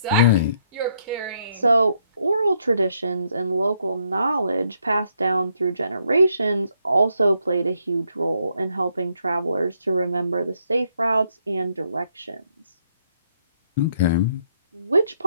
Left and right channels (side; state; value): both; inverted; correlation -0.73